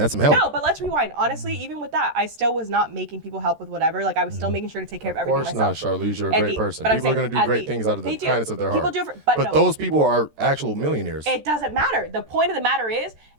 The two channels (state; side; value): late; left; 13 ms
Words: help. No, but let's rewind. Honestly, even with that, I still was not making people help with whatever. Like, I was still making sure to take care of Of everything course not, myself. Charlize. You're a And great the- person. but I'm People are saying, going to do at great the- things out of the they do. kindness of their People heart. do it but no. those people are actual millionaires. It doesn't matter. The point of the matter is